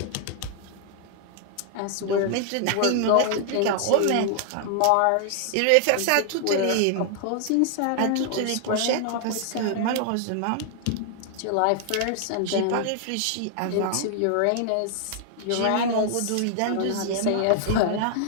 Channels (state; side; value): different; both; correlation 0.00